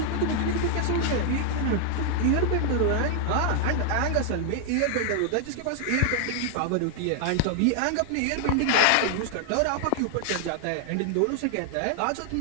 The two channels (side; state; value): both; different; correlation 0.00